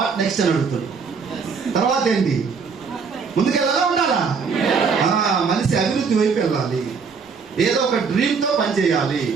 నెక్స్ట్ అని అడుగుతాడు. తర్వాత ఏంటి? ముందుకెళ్ళాలా ఉండాలా? మనిషి అభివృద్ధి వైపు వెళ్ళాలి. ఏదో ఒక డ్రీమ్ తో పనిచేయాలి.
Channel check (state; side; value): quieter; left; 5.5 dB